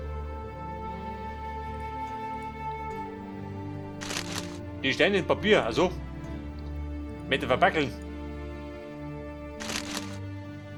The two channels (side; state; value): both; identical; correlation 1.00